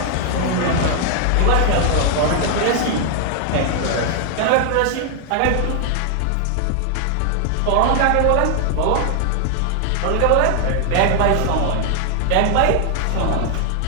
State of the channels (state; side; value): different; both; correlation 0.00